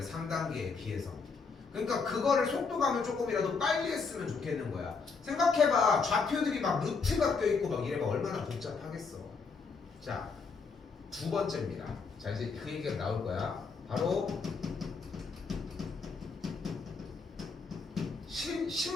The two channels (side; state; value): right; quieter; 4.8 dB